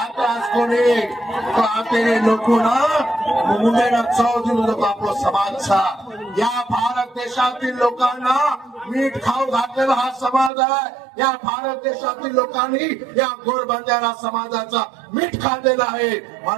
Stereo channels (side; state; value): left; drops out; at 10.5 s